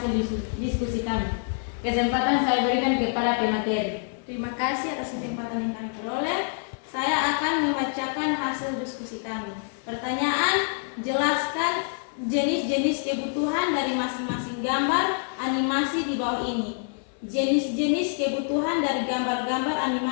diskusi kami. Kesempatan saya berikan kepada pemateri. Terima kasih atas kesempatan yang kami peroleh. Saya akan membacakan hasil diskusi kami. Pertanyaan, jelaskan jenis-jenis kebutuhan dari masing-masing gambar animasi di bawah ini. Jenis-jenis kebutuhan dari gambar-gambar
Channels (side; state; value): right; silent; 60 dB below the other